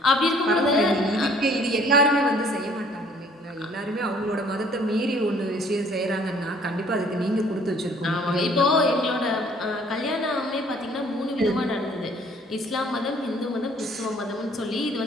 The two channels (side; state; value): both; normal; correlation 0.58